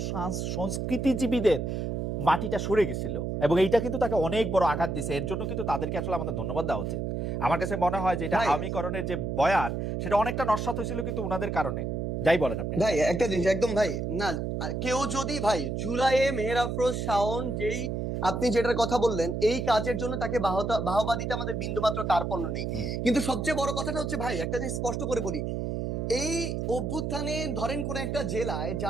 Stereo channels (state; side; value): noise; right; hum, 2 dB below the sound